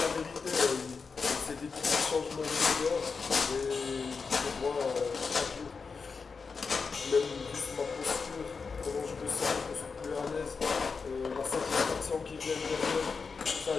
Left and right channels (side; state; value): right; quieter; 5.0 dB